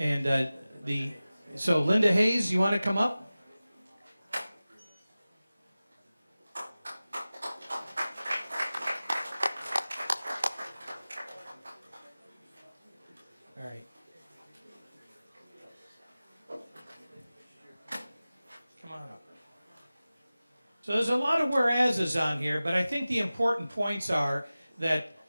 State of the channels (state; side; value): inverted; both; correlation -0.97